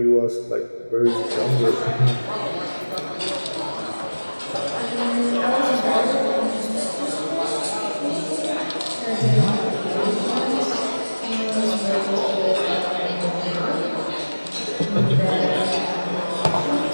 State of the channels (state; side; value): inverted; both; correlation -1.00